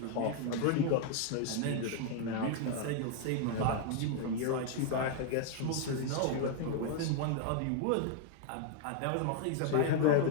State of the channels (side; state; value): both; different; correlation 0.00